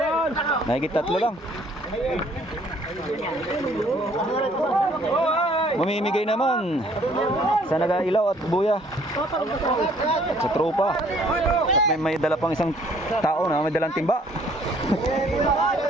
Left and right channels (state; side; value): normal; both; correlation 0.60